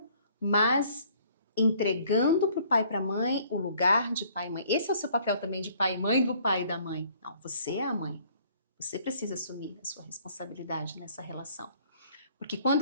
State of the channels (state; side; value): inverted; both; correlation -0.59